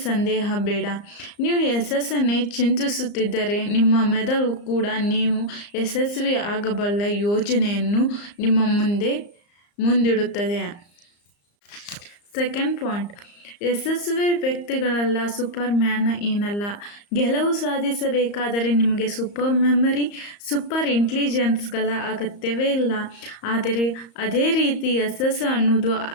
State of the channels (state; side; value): late; right; 34 ms